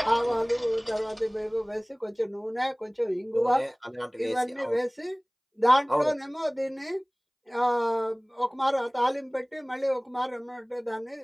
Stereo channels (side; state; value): both; identical; correlation 1.00